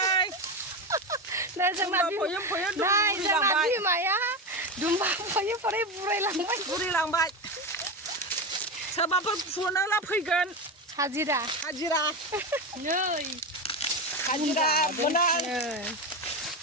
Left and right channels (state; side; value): normal; both; correlation 0.17